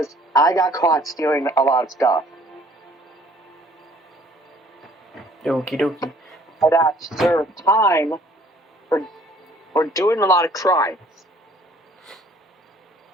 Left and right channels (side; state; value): both; normal; correlation 0.57